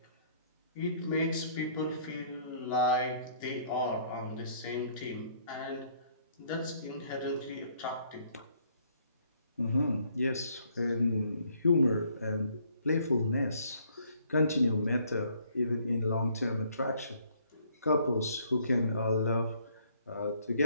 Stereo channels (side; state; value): both; inverted; correlation -0.64